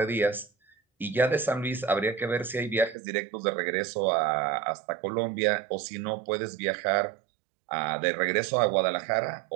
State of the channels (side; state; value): left; drops out; at 3.0 s